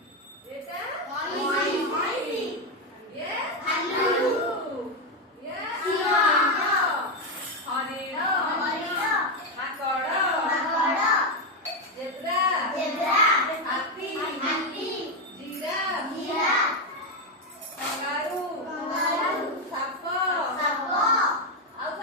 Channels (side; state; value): both; normal; correlation 0.07